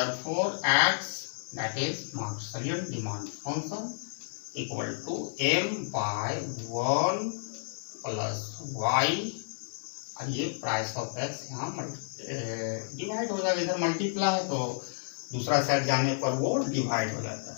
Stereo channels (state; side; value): silent; right; 57 dB below the other